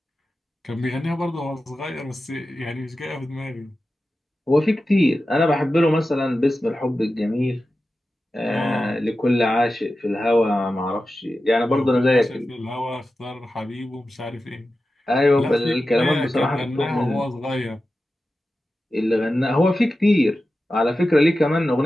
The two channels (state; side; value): normal; both; correlation 0.93